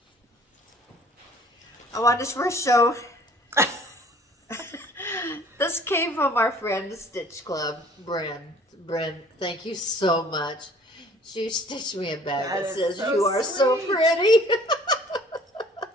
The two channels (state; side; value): normal; both; correlation 0.54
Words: I wanted to first show. This came from our friend Stitch Club, Brenda. Thank you so much. She stitched me a bag that That is says, so "You are so sweet." pretty."